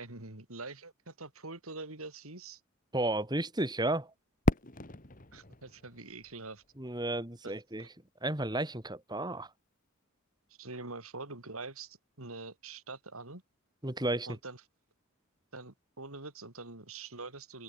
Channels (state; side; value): normal; both; correlation 0.48